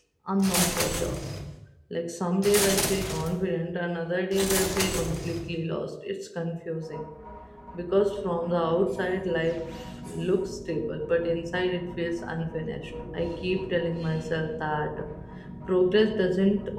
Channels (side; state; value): both; identical; correlation 1.00